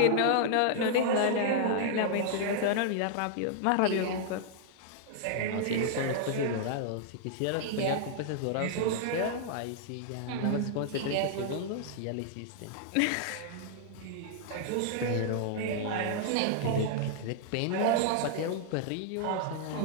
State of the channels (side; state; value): both; different; correlation -0.01